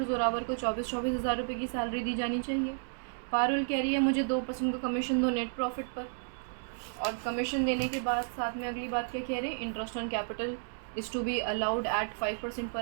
जोरावर को 24,000 रुपये की सैलरी दी जानी चाहिए। पारुल कह रही है मुझे 2% का कमीशन दो नेट प्रॉफिट पर, और कमीशन देने के बाद साथ में अगली बात क्या कह रहे हैं, interest on capital is to be allowed at 5%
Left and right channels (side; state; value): left; silent; 56 dB below the other